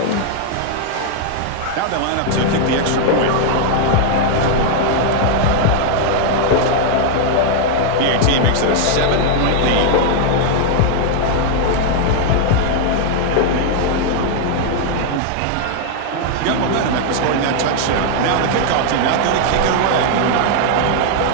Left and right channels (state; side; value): different; both; correlation 0.00